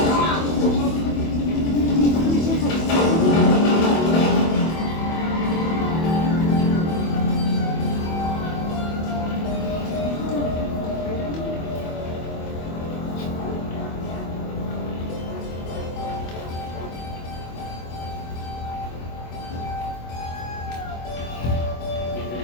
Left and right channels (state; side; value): late; right; 24 ms